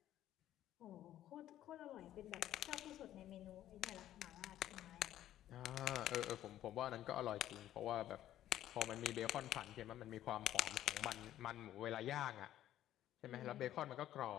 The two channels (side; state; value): right; quieter; 12.6 dB